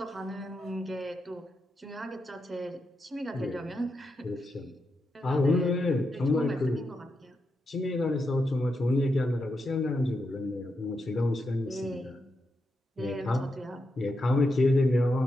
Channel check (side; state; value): both; normal; correlation 0.85